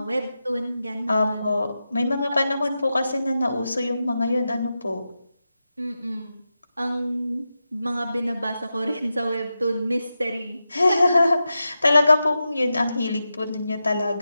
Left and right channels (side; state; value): both; inverted; correlation -0.91